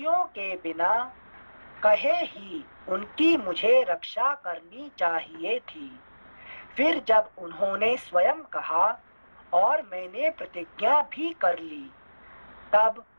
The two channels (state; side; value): inverted; both; correlation -1.00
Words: के बिना कहे ही उनकी मुझे रक्षा करनी चाहिए थी। फिर जब उन्होंने स्वयं कहा और मैंने प्रतिज्ञा भी कर ली, तब